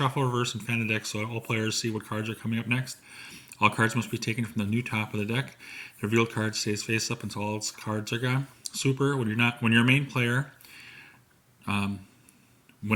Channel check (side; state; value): both; identical; correlation 1.00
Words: reverse, and fan the deck so all players see what cards are coming up next. All cards must be taken from the new top of the deck. The revealed card stays face up until all its cards are gone. Super. When you're a main player,